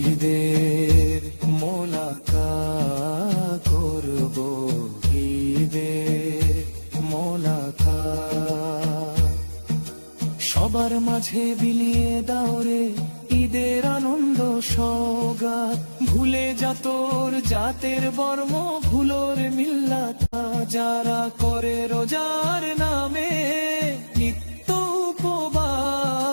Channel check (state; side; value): inverted; both; correlation -1.00